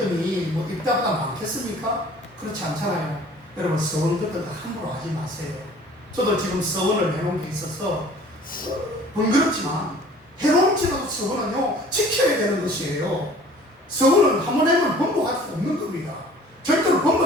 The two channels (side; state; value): both; normal; correlation 0.50